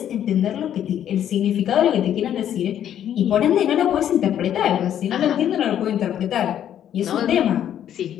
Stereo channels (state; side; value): quieter; right; 10.3 dB